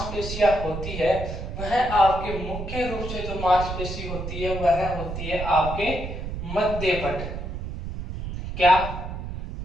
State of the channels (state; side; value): noise; right; rumble, 6 dB below the sound